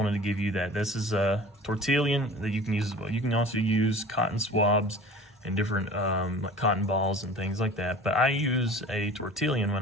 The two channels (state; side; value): normal; both; correlation 0.41